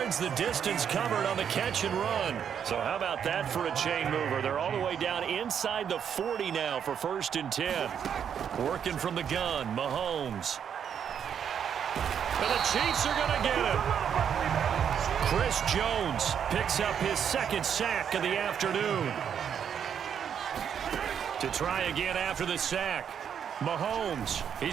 the distance covered on the catch and run. So how about that for a chain mover? They're all the way down inside the 40 now for 1st and 10. Working from the gun, Mahomes. And the Chiefs are going to get him. Chris Jones picks up his 2nd sack of the afternoon. To try again after the sack. Mahomes,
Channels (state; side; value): quieter; left; 8.2 dB